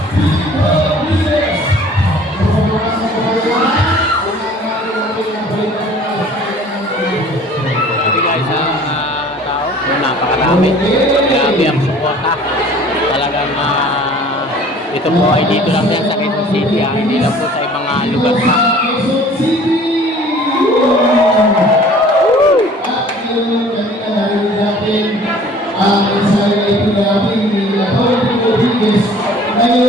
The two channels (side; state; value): both; normal; correlation 0.50